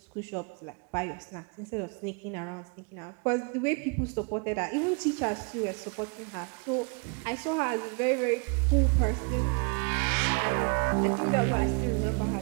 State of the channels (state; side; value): quieter; left; 35.5 dB